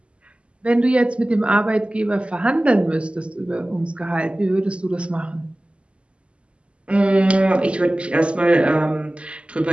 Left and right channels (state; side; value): late; left; 0.057 ms